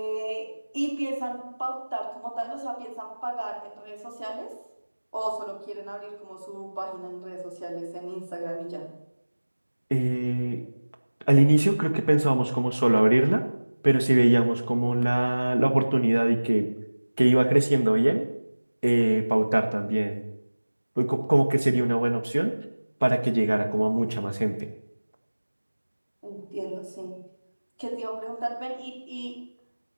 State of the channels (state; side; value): inverted; both; correlation -1.00